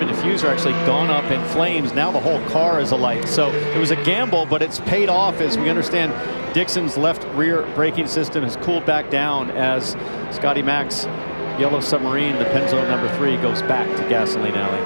diffuser, actually gone up in flames, now the whole car is alight. So it was a gamble, but it's paid off, as we understand Dixon's left rear braking system has cooled back down as Scotty Mac's Yellow Submarine, the Penzo #3, goes back to Gasoline Alley.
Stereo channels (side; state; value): both; inverted; correlation -1.00